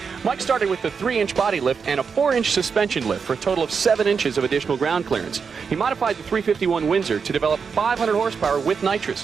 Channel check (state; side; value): quieter; left; 5.8 dB